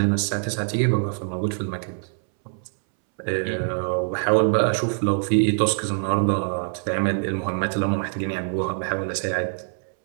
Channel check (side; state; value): left; silent; 63 dB below the other